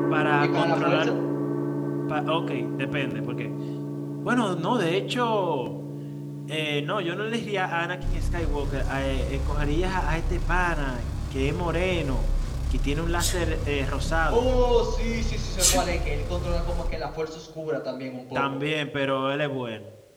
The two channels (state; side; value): identical; both; correlation 1.00